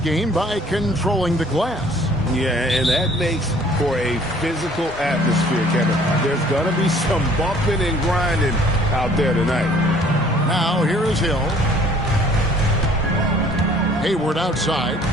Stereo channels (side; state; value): both; normal; correlation 0.55